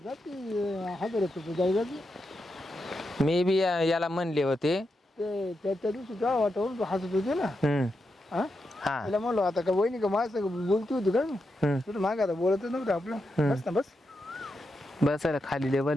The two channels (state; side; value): normal; both; correlation 0.86